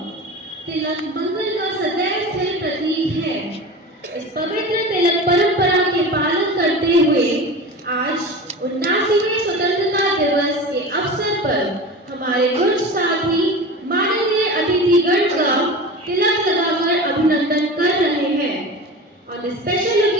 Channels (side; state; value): both; normal; correlation 0.32